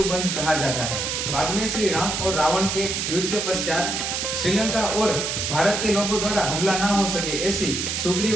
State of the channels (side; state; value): right; noise; hiss, 2 dB below the sound